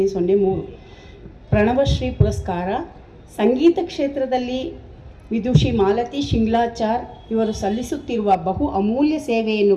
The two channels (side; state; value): both; identical; correlation 1.00